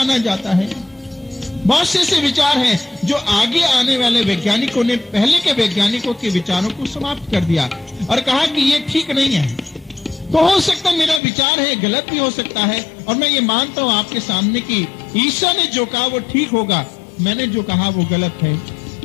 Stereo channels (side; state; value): right; drops out; at 11.2 s